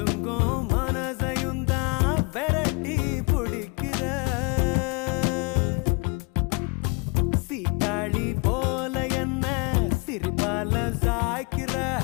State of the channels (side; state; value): right; quieter; 30.8 dB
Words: மனசையும் தான் விரட்டி பிடிக்கிற சீட்டாளி போல என்ன சிரிப்பால சாய்க்கிற